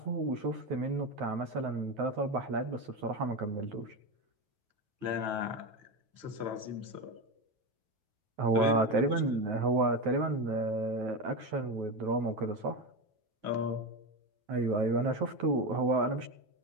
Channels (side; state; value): left; late; 9.2 ms